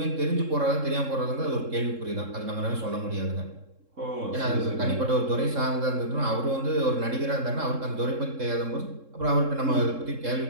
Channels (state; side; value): late; left; 3.7 ms